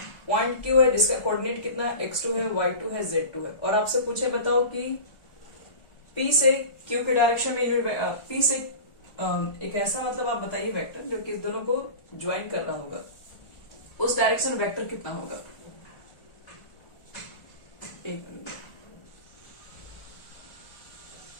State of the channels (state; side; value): late; right; 1.4 ms